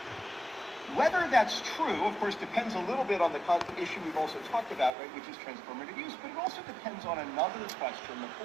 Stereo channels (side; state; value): left; drops out; at 4.9 s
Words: Whether that's true, of course, depends a little bit on the issue we've also talked about, right, which is transformative use, but it also depends on another question, the